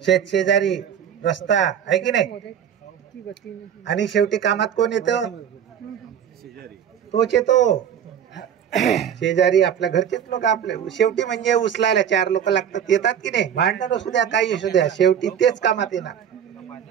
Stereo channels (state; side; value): quieter; left; 8.8 dB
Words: शेजारी, रस्ता, आहे की नाही? आणि शेवटी कामात कोण येतं? तोच येतो, शेजारी, आपल्या घरचेच लोक। आपले शेवटी म्हणजे उचलायला 4 लोक लागतात, येतात की नाही? भांडण असू द्या, काही असू द्या, शेवटी तेच कामात येणार।